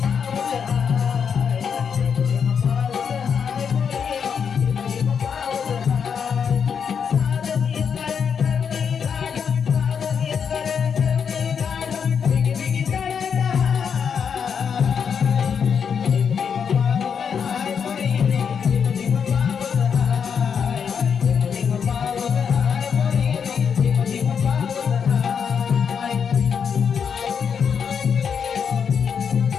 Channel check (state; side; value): quieter; right; 6.9 dB